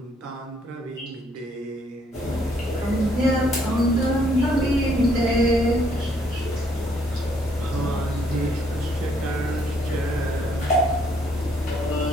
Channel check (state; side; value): normal; both; correlation 0.68